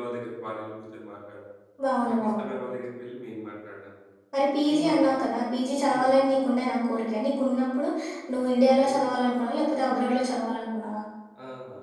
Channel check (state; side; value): identical; both; correlation 1.00